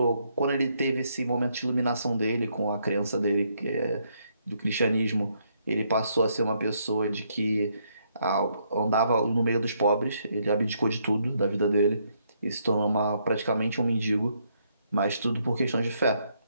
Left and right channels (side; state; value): both; inverted; correlation -0.74